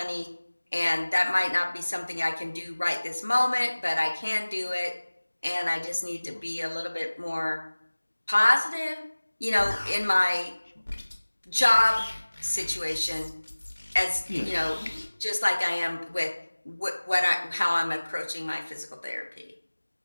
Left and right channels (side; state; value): both; inverted; correlation -1.00